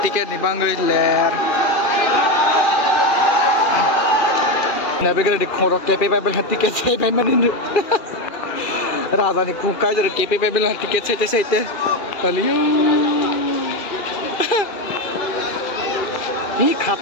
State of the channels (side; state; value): right; late; 2.4 ms